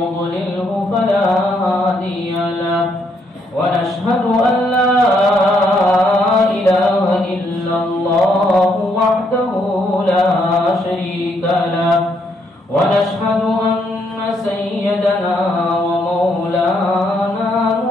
فلا هادي له ونشهد أن لا إله إلا الله وحده لا شريك له ونشهد أن سيدنا ومولانا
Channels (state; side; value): normal; both; correlation 0.73